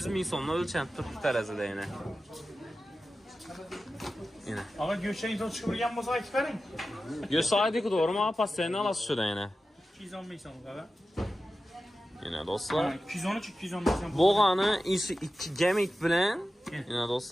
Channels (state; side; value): normal; both; correlation 0.93